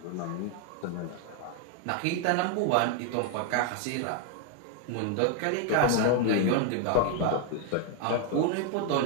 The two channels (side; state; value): both; different; correlation 0.00